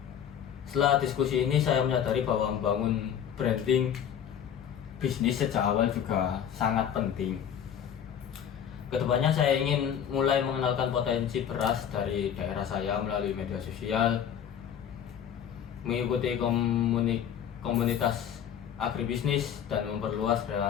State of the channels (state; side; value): quieter; right; 9.0 dB